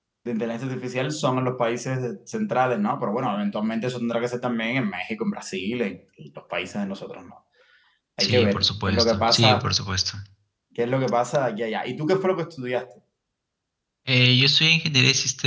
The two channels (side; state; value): both; identical; correlation 1.00